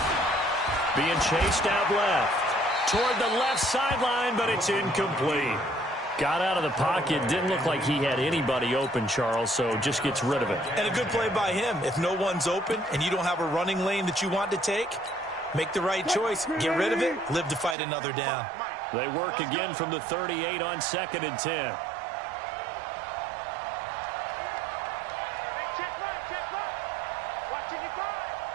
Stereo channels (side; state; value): left; drops out; at 17.8 s